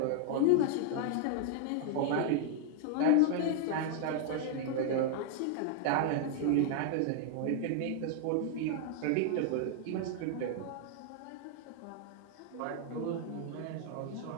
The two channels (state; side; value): different; both; correlation 0.00